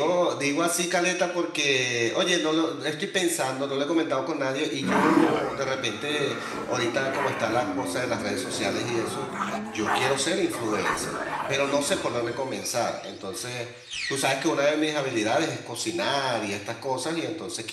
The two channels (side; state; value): both; identical; correlation 1.00